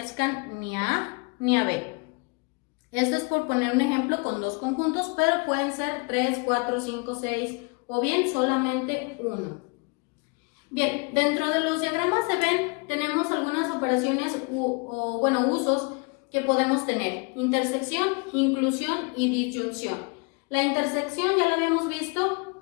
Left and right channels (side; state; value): right; quieter; 31.7 dB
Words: ni a A ni a B. Esto es por poner un ejemplo con dos conjuntos, pero pueden ser 3, 4, 5, 6 o bien solamente uno. Bien, dentro de los diagramas de Venn tenemos algunas operaciones usos que podemos tener: intersección, inclusión y disyunción. La intersección ya la habíamos